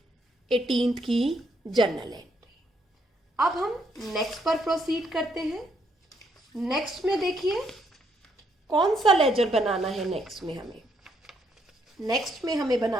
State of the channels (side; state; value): both; normal; correlation 0.74